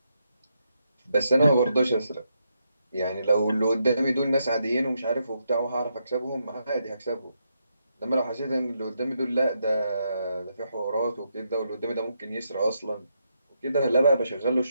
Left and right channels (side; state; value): both; inverted; correlation -0.81